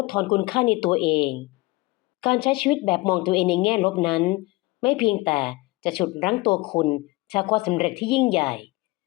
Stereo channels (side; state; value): right; quieter; 21.6 dB